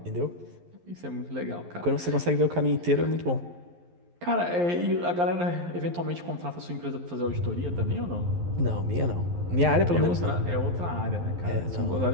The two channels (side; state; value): left; late; 11 ms